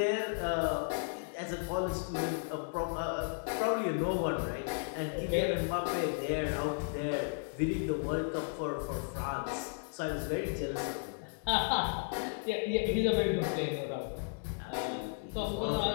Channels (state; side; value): silent; right; digital silence